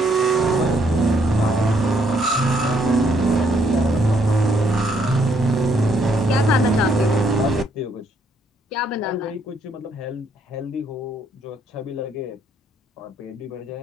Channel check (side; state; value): both; normal; correlation 0.71